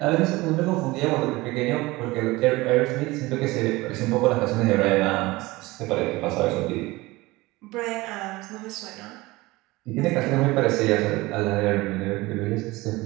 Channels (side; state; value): left; quieter; 20.9 dB